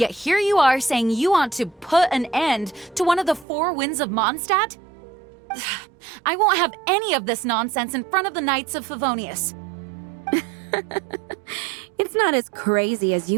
here you are saying you want to put an end to one of the four winds of Mondstadt? I won't have any of this nonsense in front of the Knights of Favonius. It's not as crazy as you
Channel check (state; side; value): drops out; left; at 3.5 s